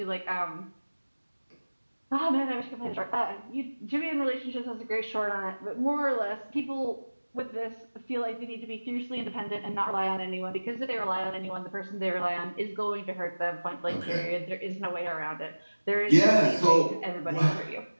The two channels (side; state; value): both; inverted; correlation -1.00